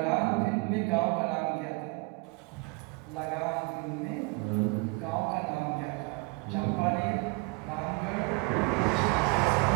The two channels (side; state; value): left; quieter; 28.0 dB